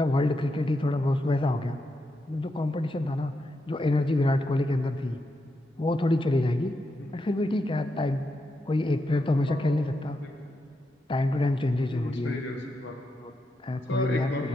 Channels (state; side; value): normal; both; correlation 0.84